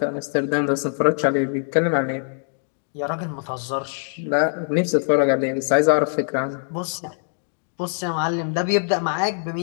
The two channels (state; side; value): silent; right; digital silence